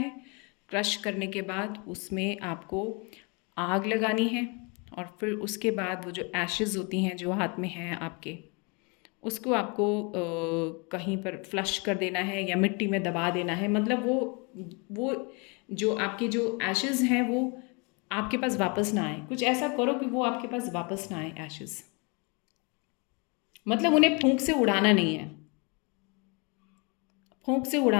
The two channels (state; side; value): quieter; right; 31.6 dB